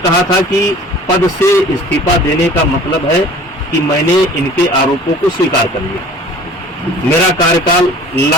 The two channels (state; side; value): normal; both; correlation 0.47